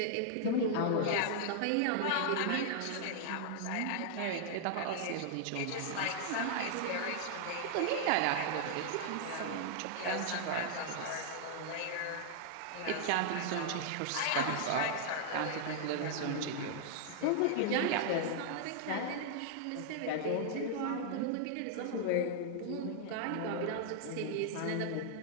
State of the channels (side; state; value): both; different; correlation -0.01